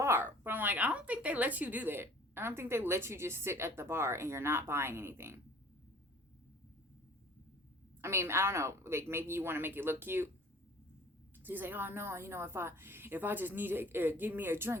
But I'm like, I don't think they let you do that. I don't think they let you just sit at the bar and you're not buying anything. I mean, I don't know. Like, maybe you want to make it look cute. So he's like, oh, no, if I just need to give me a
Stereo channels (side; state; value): both; normal; correlation 0.50